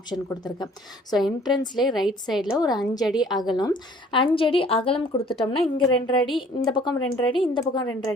கொடுத்துருக்கேன். ஸோ என்ட்ரன்ஸ்லேயே ரைட் சைடில் ஒரு 5 அடி அகலம் 5 அடி அகலம் கொடுத்துட்டோம்னா இங்கே 2 அடி, இந்த பக்கம் 2 அடி, இந்த பக்கம் 2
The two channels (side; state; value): both; normal; correlation 0.55